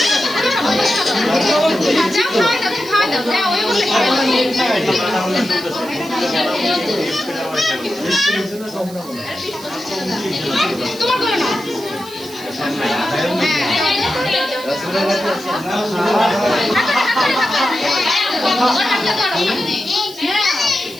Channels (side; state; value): right; noise; hiss, 18 dB below the sound